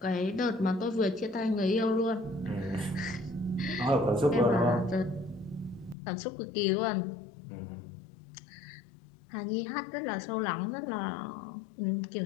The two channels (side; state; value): right; drops out; at 6.0 s